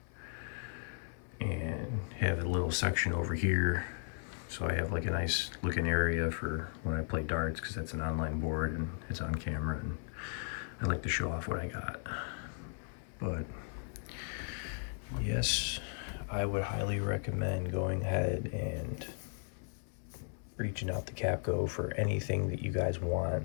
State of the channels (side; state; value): right; silent; 54 dB below the other